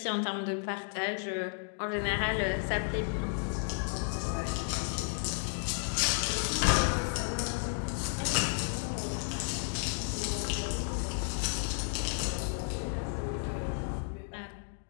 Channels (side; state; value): right; silent; 56 dB below the other